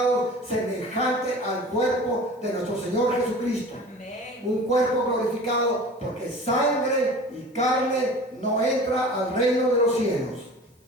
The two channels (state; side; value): normal; both; correlation 0.40